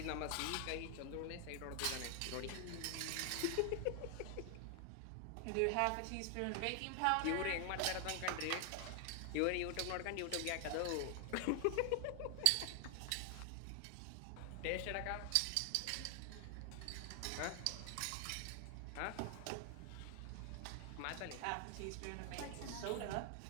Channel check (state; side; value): different; both; correlation 0.00